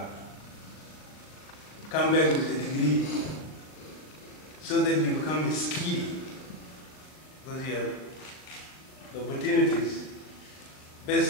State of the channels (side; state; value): right; late; 39 ms